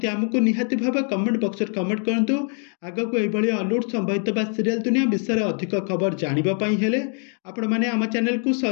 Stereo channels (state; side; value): quieter; right; 39.3 dB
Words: आमको निहाती भाव कमेंट बॉक्स में कमेंट करंतु। आगो को एभली हॉलीवुड संबंधित बा सीरियल दुनिया विषय में अधिक खबर जानिबा पई हेले आपण माने आम चैनल को